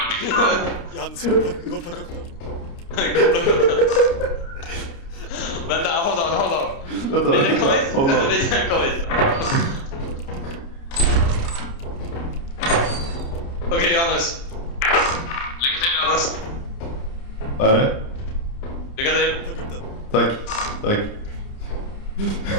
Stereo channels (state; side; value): late; right; 29 ms